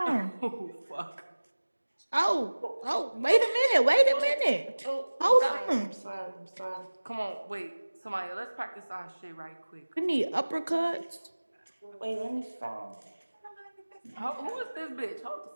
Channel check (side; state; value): both; inverted; correlation -1.00